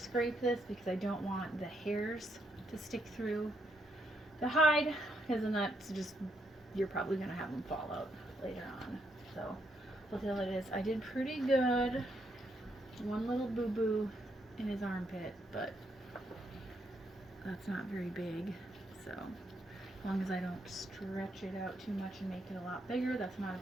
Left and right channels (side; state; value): both; normal; correlation 0.77